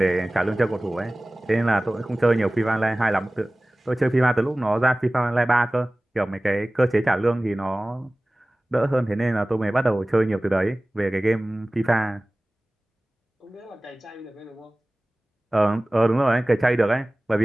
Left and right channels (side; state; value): both; normal; correlation 0.98